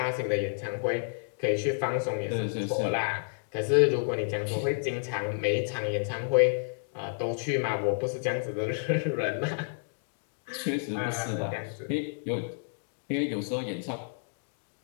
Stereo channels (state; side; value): silent; right; digital silence